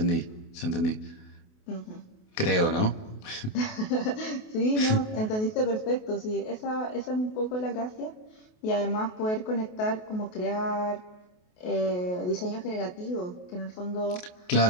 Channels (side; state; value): right; late; 28 ms